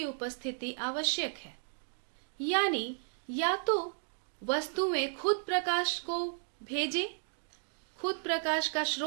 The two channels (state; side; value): silent; left; digital silence